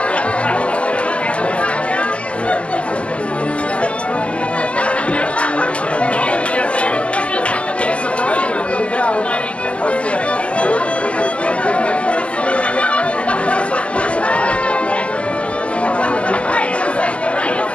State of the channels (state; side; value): late; right; 0.058 ms